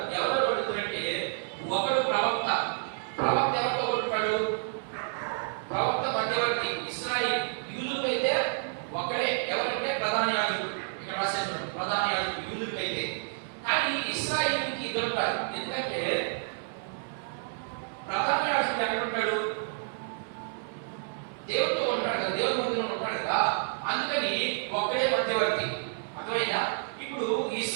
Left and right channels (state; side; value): silent; left; 58 dB below the other